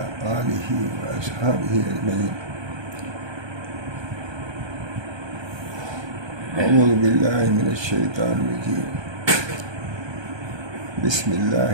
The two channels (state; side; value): late; left; 1.3 ms